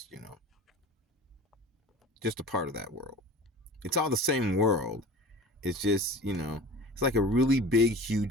just a part of that world. It's all the same world. It's just, it's like a really big,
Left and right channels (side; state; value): both; normal; correlation 0.39